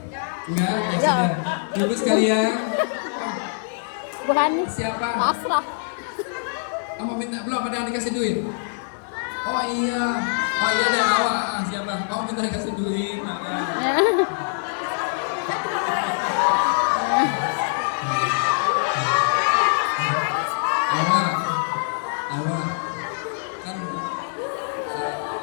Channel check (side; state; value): right; silent; digital silence